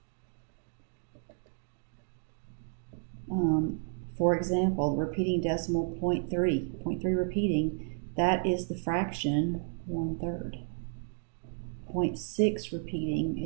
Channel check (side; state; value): left; silent; 56 dB below the other